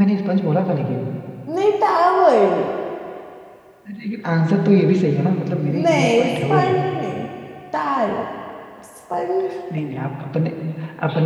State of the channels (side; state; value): both; identical; correlation 1.00